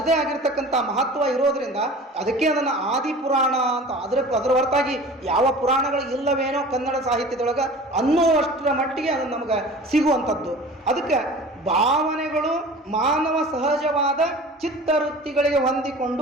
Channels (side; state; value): both; normal; correlation 0.40